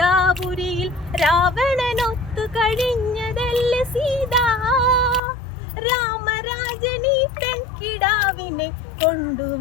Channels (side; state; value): right; drops out; at 5.2 s